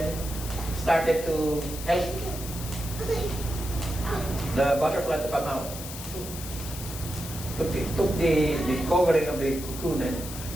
started to help the butterfly to come out. Took the covering of the cocoon and,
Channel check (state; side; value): noise; left; hiss, 10 dB below the sound